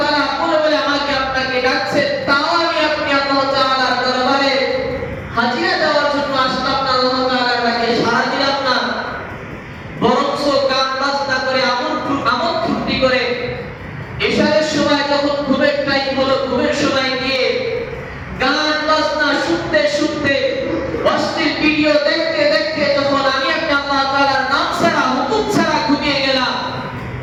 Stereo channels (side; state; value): both; identical; correlation 1.00